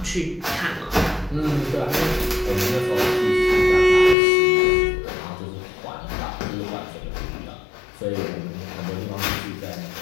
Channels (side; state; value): right; drops out; at 4.2 s